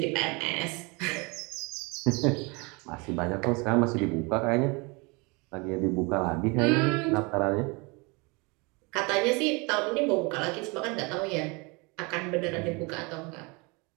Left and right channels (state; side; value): quieter; left; 28.5 dB